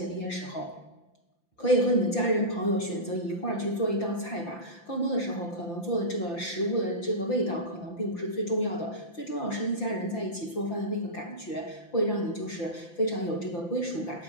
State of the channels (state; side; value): late; right; 5.9 ms